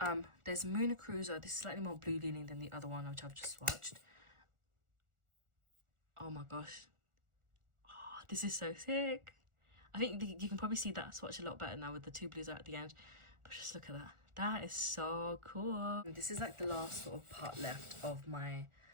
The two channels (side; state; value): left; late; 1.4 ms